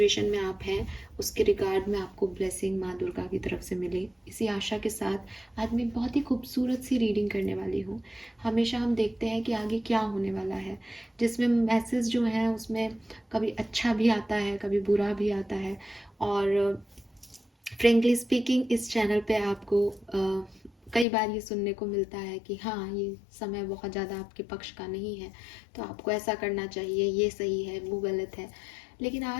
में आप हैं उसके रिगार्ड में आपको ब्लेसिंग माँ दुर्गा की तरफ से मिले, इसी आशा के साथ आज मैं बहुत ही खूबसूरत सी रीडिंग करने वाली हूँ। हमेशा हम देखते हैं कि आगे क्या होने वाला है, जिसमें मैसेज जो है उसमें कभी अच्छा भी आता है, कभी बुरा भी आता है। और फ्रेंकली स्पीकिंग इस चैनल पे आपको कई बार ये सुनने को मिलता है कि हाँ, ये समय बहुत ज़्यादा आपके पक्ष का नहीं है, तो आपको ऐसा करना चाहिए, ये सही है, वो गलत है। लेकिन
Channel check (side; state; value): right; drops out; at 21.1 s